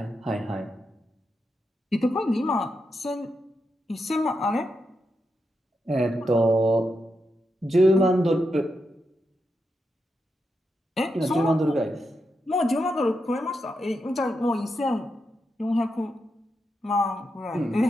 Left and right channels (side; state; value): both; normal; correlation 0.85